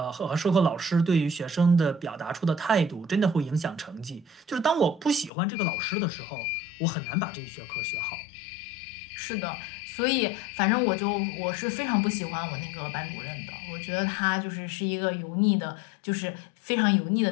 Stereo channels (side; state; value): right; drops out; at 5.3 s